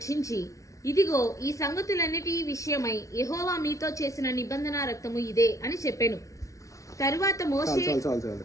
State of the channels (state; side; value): late; right; 0.16 ms